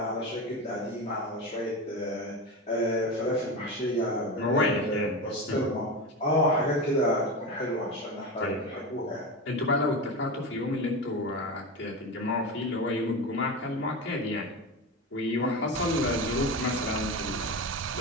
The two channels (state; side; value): normal; both; correlation 0.22